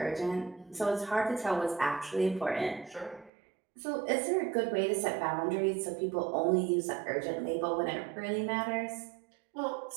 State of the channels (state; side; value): drops out; left; at 3.3 s